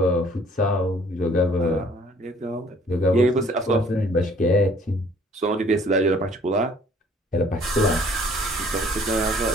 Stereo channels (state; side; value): normal; both; correlation 0.57